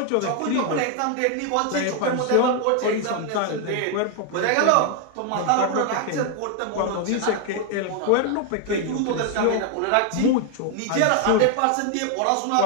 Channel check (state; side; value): different; both; correlation 0.01